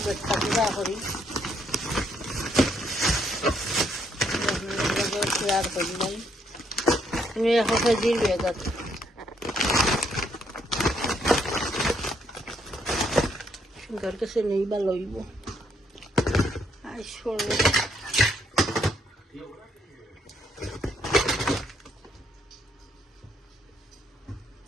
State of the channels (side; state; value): both; normal; correlation 0.72